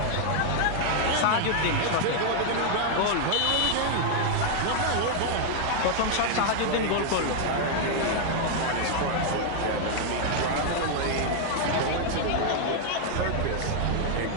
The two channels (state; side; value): different; both; correlation 0.00